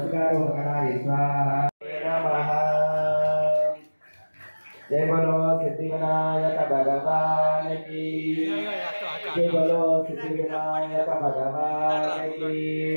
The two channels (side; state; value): both; inverted; correlation -1.00